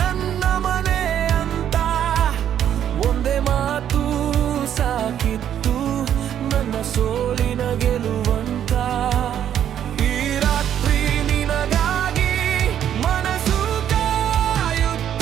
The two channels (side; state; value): left; quieter; 10.0 dB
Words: ಮನೆ ಅಂತ, ಒಂದೇ ಮಾತು ಸಾಕಿತ್ತು ನನ್ನ ಸೋಲಿನ ಗೆಲುವಂತ. ಈ ರಾತ್ರಿ ನಿನಗಾಗಿ ಮನಸ್ಸು